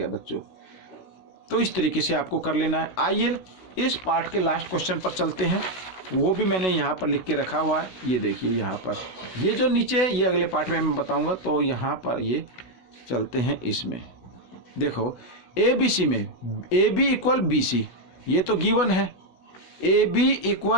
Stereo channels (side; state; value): right; late; 16 ms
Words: बच्चों। तो इस तरीके से आपको कर लेना है। आइए इस पार्ट के लास्ट क्वेश्चन पर चलते हैं, वो भी मैंने यहाँ पर लिख के रखा हुआ है, ये देखिए यहाँ पर, ये जो नीचे है ये अगले पार्ट में मैं बताऊँगा। तो यहाँ पर ये चलते हैं, इसमें देखो ABC में AB = BC, ये तो गिवन है, AB